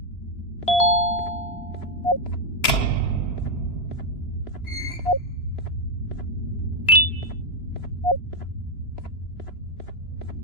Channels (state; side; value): late; right; 3.0 ms